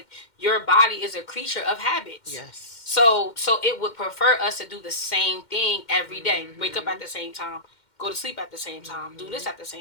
your body is a creature of habits. Yes. So it would prefer us to do the same thing every day. Wake up Mm-hmm. at the same time, go to sleep at the same time, do this Mm-hmm. at the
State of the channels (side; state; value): right; late; 2.1 ms